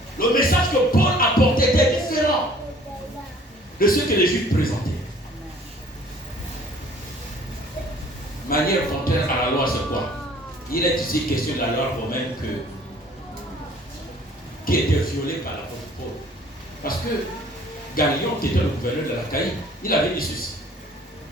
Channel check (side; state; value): both; normal; correlation 0.54